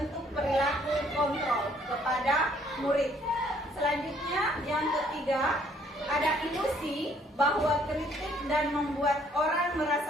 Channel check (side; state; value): both; normal; correlation 0.63